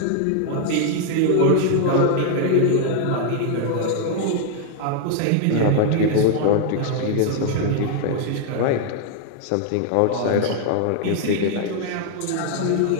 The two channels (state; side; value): different; both; correlation 0.00